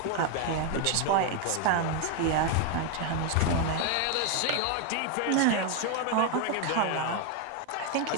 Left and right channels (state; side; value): different; both; correlation 0.01